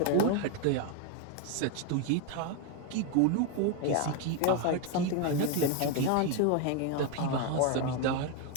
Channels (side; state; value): both; different; correlation 0.01